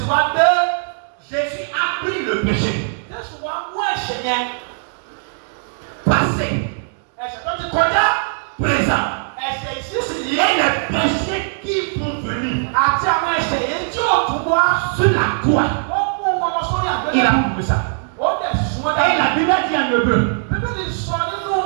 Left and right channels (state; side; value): silent; left; digital silence